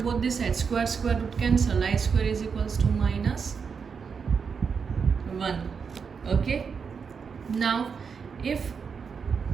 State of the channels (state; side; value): quieter; left; 6.0 dB